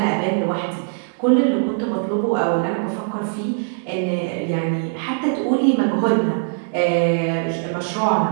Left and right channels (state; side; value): quieter; left; 37.1 dB